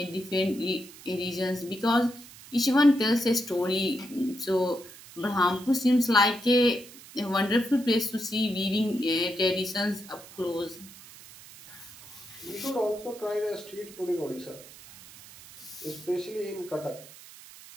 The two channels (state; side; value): noise; right; hiss, 19 dB below the sound